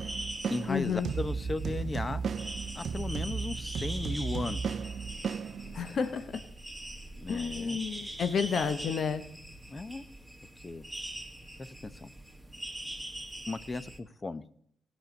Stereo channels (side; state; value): both; normal; correlation 0.81